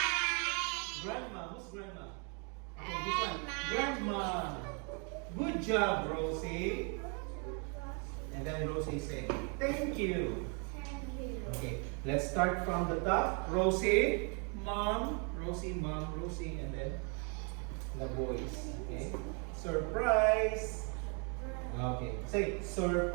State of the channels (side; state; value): left; quieter; 36.7 dB